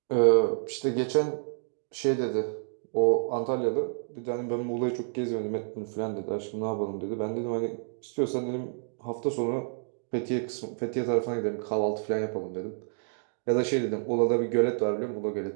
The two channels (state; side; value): silent; left; digital silence